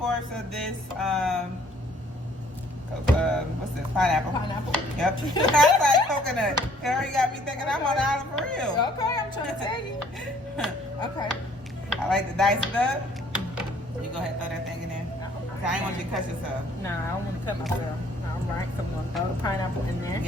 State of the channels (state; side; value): normal; both; correlation 0.60